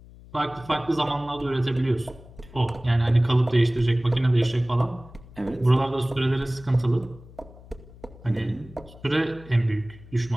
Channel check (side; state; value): left; noise; hum, 20 dB below the sound